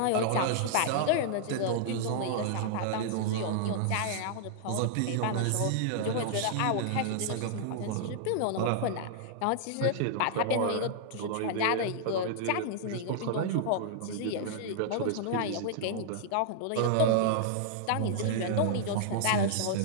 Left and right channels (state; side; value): different; both; correlation -0.01